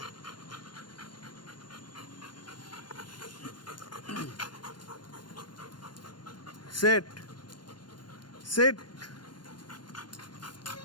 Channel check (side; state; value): right; late; 0.71 ms